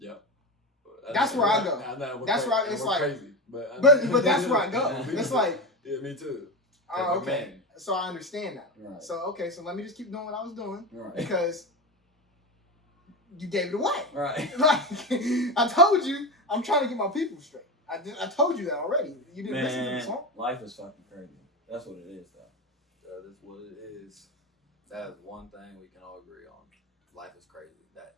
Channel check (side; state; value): both; normal; correlation 0.20